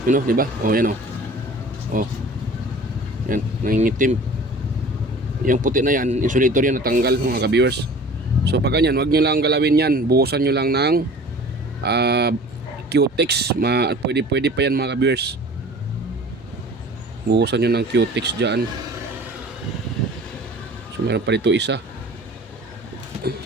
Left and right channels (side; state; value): both; normal; correlation 0.44